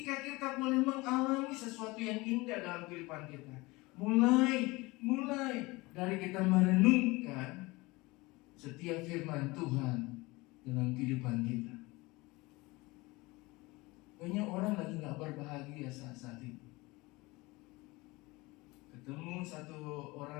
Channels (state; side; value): quieter; right; 22.7 dB